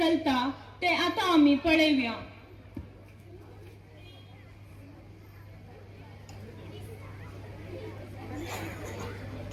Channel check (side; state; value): both; identical; correlation 1.00